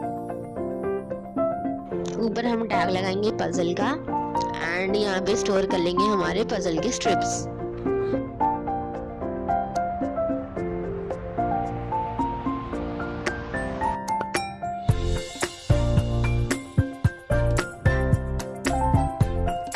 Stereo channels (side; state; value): both; identical; correlation 1.00